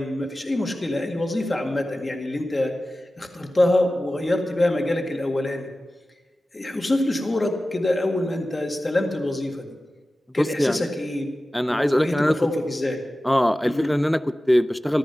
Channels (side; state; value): both; normal; correlation 0.95